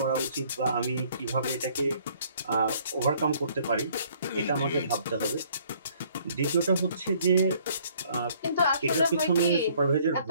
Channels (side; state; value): both; inverted; correlation -0.61